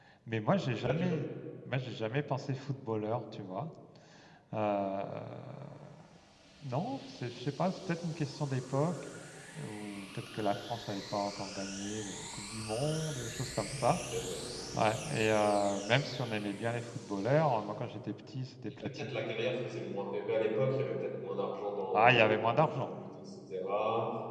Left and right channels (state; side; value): identical; both; correlation 1.00